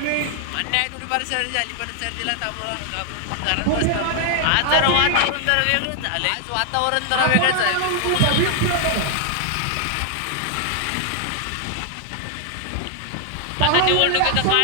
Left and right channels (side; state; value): both; different; correlation 0.00